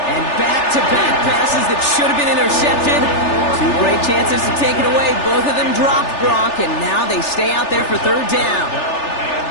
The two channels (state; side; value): late; right; 3.4 ms